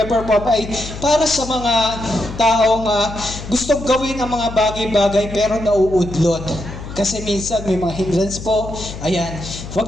Pop ay para sa mga taong gustong gawin ang mga bagay-bagay pero nauudlot. Kasi minsan may mga hindrance po. Ayan,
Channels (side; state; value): left; noise; hum, 11 dB below the sound